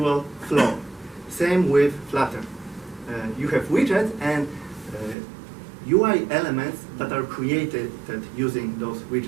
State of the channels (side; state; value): left; drops out; at 5.2 s